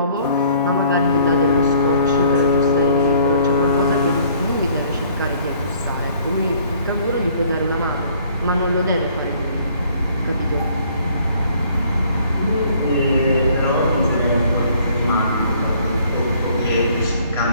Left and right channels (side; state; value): both; inverted; correlation -0.59